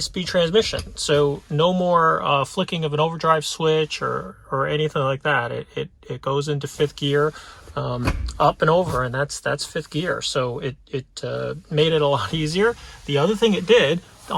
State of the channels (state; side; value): identical; both; correlation 1.00